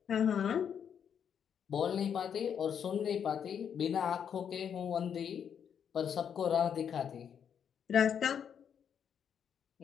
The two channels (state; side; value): quieter; right; 8.0 dB